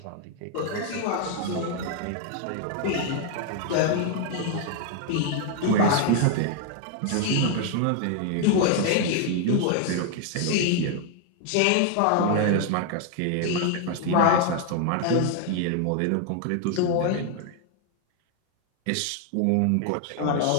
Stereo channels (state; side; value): different; both; correlation 0.00